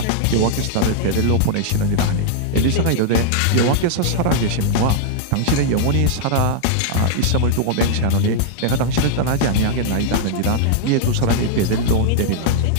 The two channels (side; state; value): both; different; correlation -0.01